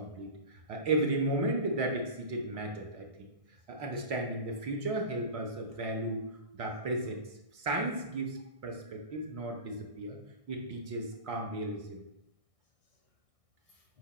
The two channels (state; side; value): late; left; 1.6 ms